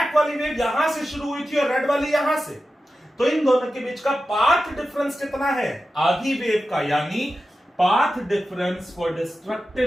वाली वेव यहां से शुरू हुई थी और रेड वाली यहां से, तो इन दोनों के बीच का पाथ डिफरेंस कितना है? आधी वेव का, यानी path difference for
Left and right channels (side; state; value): both; normal; correlation 0.92